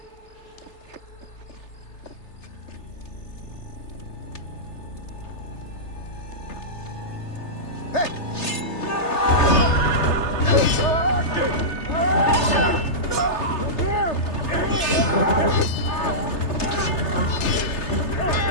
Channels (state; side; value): late; right; 3.3 ms